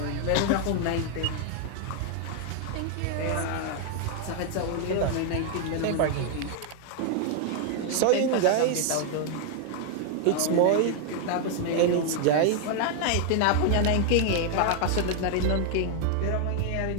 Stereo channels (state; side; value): different; both; correlation 0.00